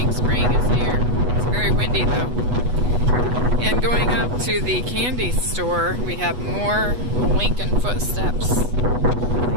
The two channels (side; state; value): left; late; 8.2 ms